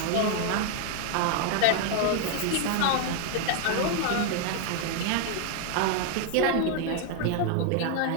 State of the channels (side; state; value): both; different; correlation 0.00